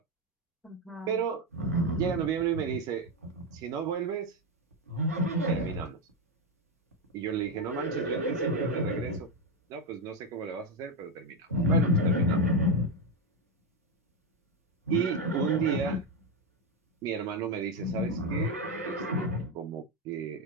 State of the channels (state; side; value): normal; both; correlation 0.08